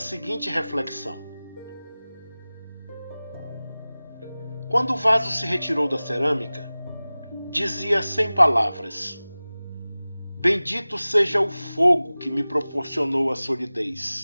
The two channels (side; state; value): both; inverted; correlation -0.98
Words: reflexão: quando o vaso se retirou da cerâmica, dizia sem palavras: Bendito seja o fogo que me proporcionou a